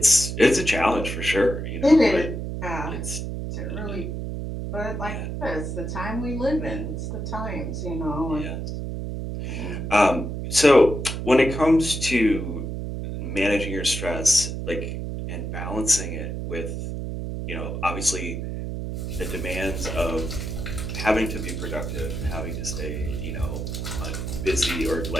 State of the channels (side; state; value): right; noise; hum, 4 dB below the sound